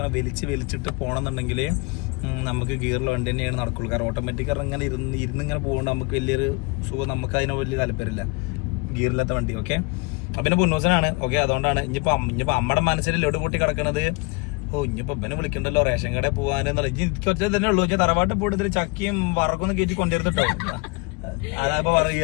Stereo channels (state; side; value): quieter; right; 27.7 dB